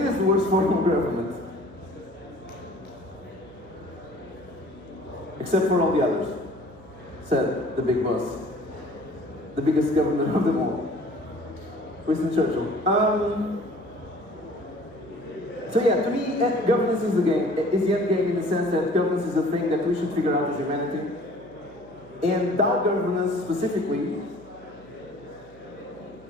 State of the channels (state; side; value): noise; right; hum, 24 dB below the sound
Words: the worst form of government. Except for all the others, said the big boss. The biggest government of them all. Winston Churchill. So yeah, to me, governance is the game. Is the end game in the sense that governance is a thing that we should figure out as humanity. And DAO governance specifically,